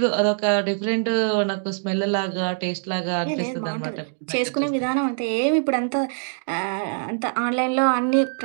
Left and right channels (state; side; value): silent; left; digital silence